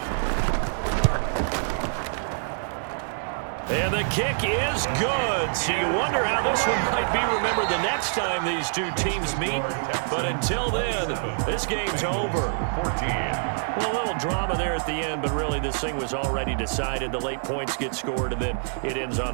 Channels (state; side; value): silent; left; digital silence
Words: And the kick is good. So you wonder how this one might be remembered the next time these 2 teams meet. But until then, this game's over. Well, a little drama there at the end, but really this thing was already decided. The late points get scored, and then it ends on